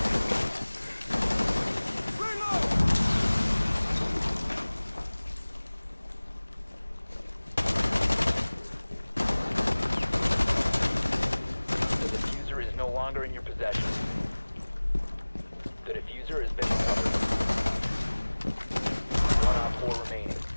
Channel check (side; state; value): both; inverted; correlation -1.00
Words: The diffuser is no longer in your possession. The diffuser has been recovered. 1 Op 4 remaining.